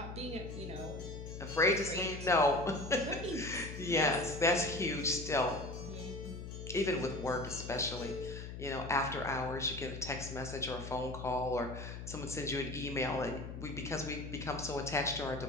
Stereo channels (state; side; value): noise; left; hum, 9 dB below the sound